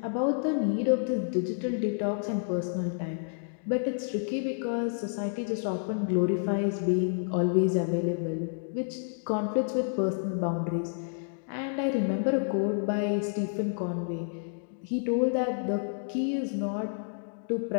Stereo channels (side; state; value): right; silent; digital silence